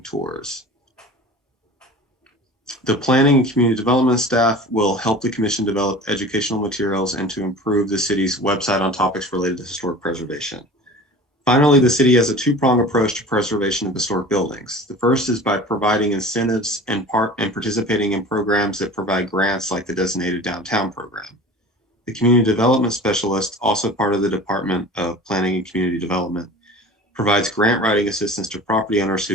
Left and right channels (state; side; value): normal; both; correlation 0.39